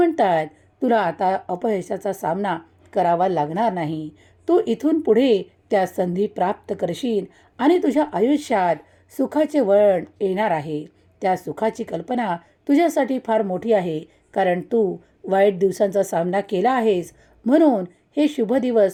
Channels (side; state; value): both; identical; correlation 1.00